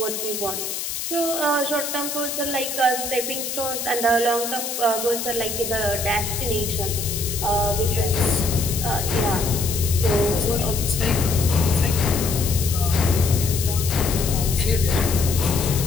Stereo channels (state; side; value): noise; left; hiss, 5 dB below the sound